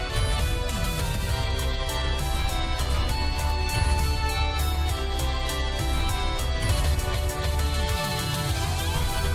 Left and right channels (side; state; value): both; identical; correlation 1.00